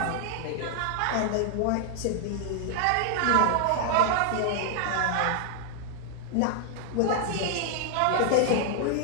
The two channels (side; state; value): both; different; correlation 0.00